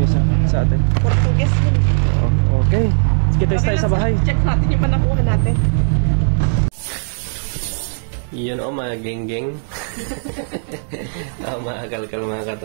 isa sa atin. Portuguese yun. Okay. Sige tayo sa bahay. Check natin yung panakuha natin. Yun mga geng-geng. Mga kalkal mga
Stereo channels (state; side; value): silent; left; digital silence